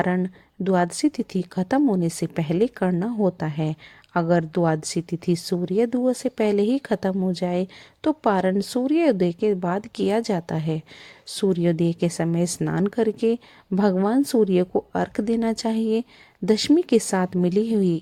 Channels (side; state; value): both; identical; correlation 1.00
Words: द्वादशी तिथि खत्म होने से पहले करना होता है। अगर द्वादशी तिथि सूर्योदय से पहले ही खत्म हो जाए तो पारण सूर्योदय के बाद किया जाता है। सूर्योदय के समय स्नान करके भगवान सूर्य को अर्घ देना चाहिए। दशमी के साथ मिली हुई